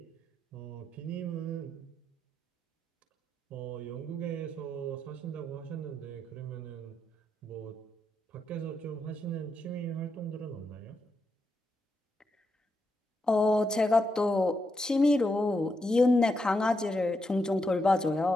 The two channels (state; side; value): normal; both; correlation 0.83